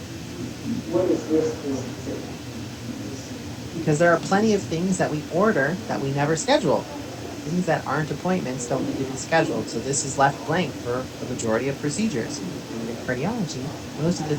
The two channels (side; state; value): both; identical; correlation 1.00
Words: Because there are plenty of things that we order that we never schedule. Things that aren't appointments don't need to be scheduled, so this is left blank for the majority of procedures. And in cardiology, most of the